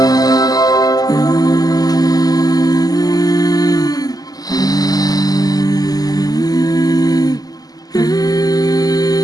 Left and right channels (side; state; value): right; late; 0.18 ms